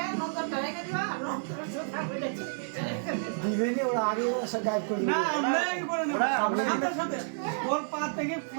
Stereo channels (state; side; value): silent; left; digital silence